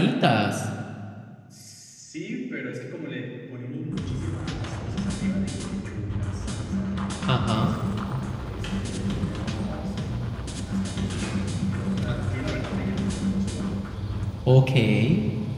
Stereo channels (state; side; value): identical; both; correlation 1.00